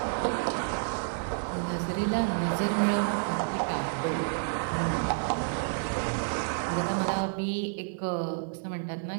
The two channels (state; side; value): silent; left; 58 dB below the other